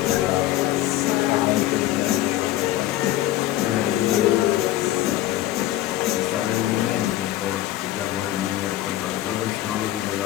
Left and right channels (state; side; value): quieter; right; 14.4 dB